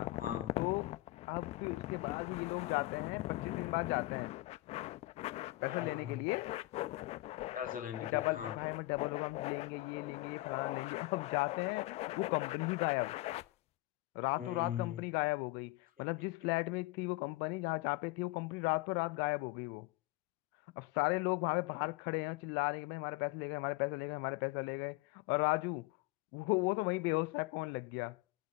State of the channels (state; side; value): quieter; right; 20.6 dB